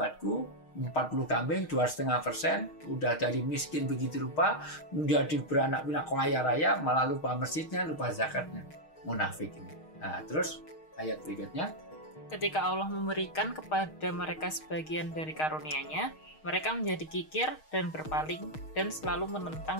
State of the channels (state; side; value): late; right; 6.4 ms